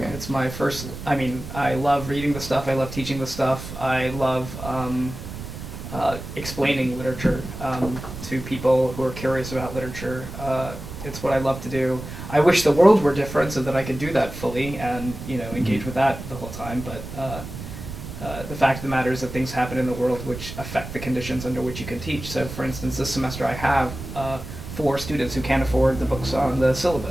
It's my first. I mean, I love reading the stuff. I love teaching the stuff. I love explaining literature to people who are curious about literature. It's what I love to do. I wish the world were different so that I could do that fully and engage with that the whole time. But the fact of the matter is that things happen in the world which affect the conditions under which you can teach. So, for instance, this semester I have 4 students who can't afford the books on the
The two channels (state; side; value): noise; right; rumble, 10 dB below the sound